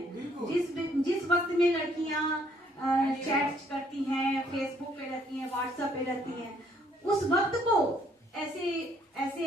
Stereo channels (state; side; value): normal; both; correlation 0.66